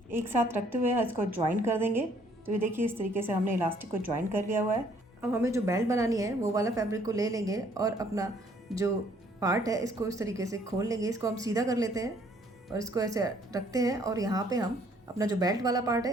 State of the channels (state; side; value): normal; both; correlation 0.63